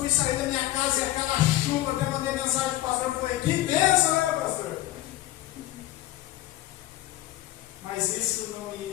sair da minha casa e aquela chuva, até mandei mensagem para o pastor, eu falei, que bênção, né, pastor? Mas isso não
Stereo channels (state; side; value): quieter; right; 15.3 dB